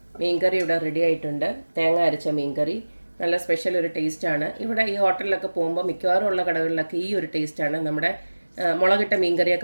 മീൻകറി ഇവിടെ റെഡി ആയിട്ടുണ്ട്. തേങ്ങ അരച്ച മീൻകറി നല്ല സ്പെഷ്യൽ ഒരു ടേസ്റ്റാണ്. ഇവിടെ ഈ ഹോട്ടലിലൊക്കെ പോകുമ്പോൾ മിക്കവാറും ഉള്ള കടകളിലൊക്കെ ഈ ഒരു ടേസ്റ്റാണ്. നമ്മുടെ മുളകിട്ട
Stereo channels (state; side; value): inverted; both; correlation -1.00